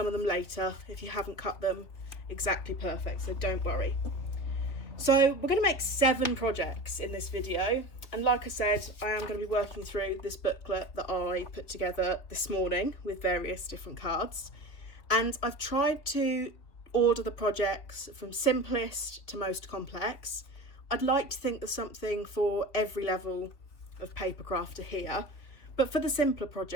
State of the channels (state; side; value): late; right; 3.6 ms